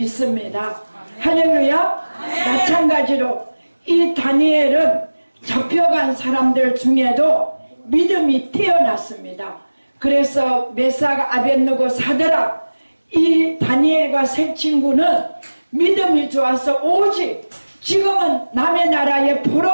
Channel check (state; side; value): inverted; both; correlation -1.00